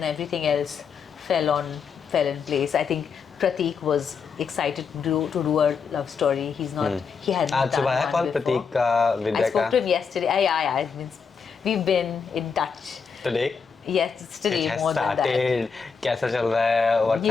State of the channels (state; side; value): quieter; right; 5.8 dB